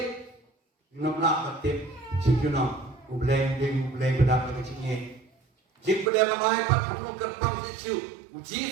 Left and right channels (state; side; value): drops out; left; at 6.1 s